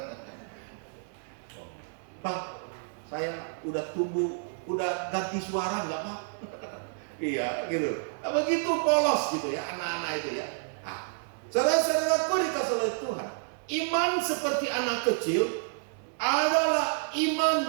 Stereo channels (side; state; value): left; silent; 58 dB below the other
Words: Pak, saya udah tumbuh, udah ganti suara nggak, Pak? Iya, gitu. Nah, begitu polos gitu ya anak-anak itu ya. Saudara-saudaraku dikasih oleh Tuhan, iman seperti anak kecil adalah